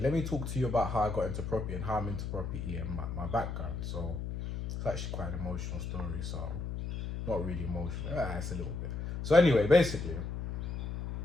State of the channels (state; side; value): noise; left; hum, 5 dB below the sound